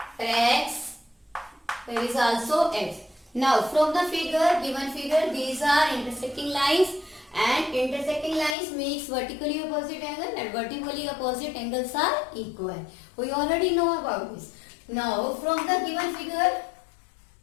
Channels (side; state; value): right; drops out; at 8.6 s